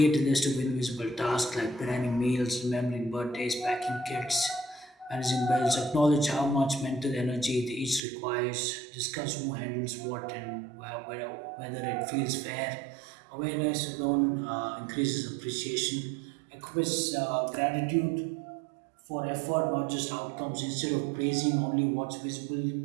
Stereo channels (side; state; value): left; drops out; at 8.0 s